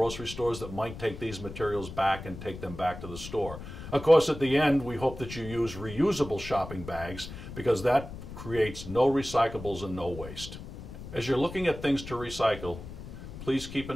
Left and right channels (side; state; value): left; noise; rumble, 12 dB below the sound